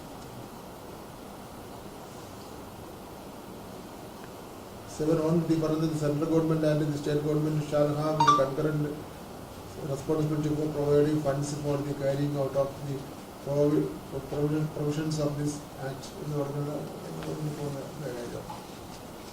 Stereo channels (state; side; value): identical; both; correlation 1.00